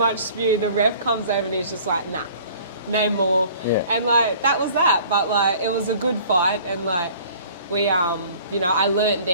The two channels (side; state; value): both; inverted; correlation -0.50